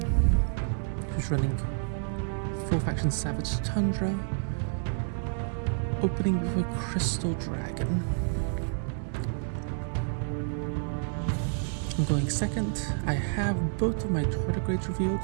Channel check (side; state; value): left; silent; digital silence